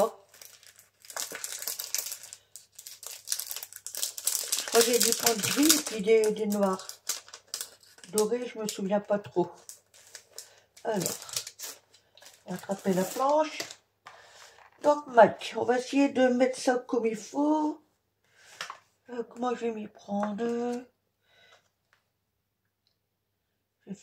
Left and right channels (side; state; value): both; identical; correlation 1.00